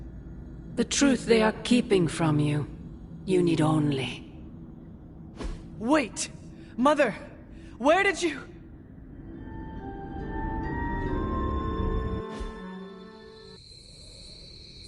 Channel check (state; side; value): identical; both; correlation 1.00